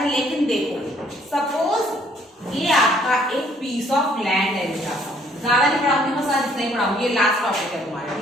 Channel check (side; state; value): both; normal; correlation 0.63